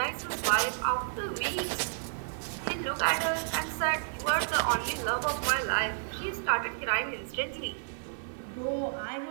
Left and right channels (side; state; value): left; silent; digital silence